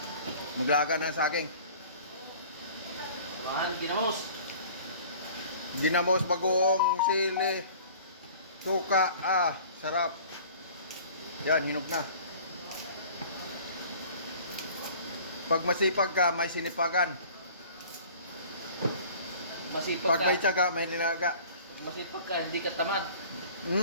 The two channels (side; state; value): both; inverted; correlation -0.47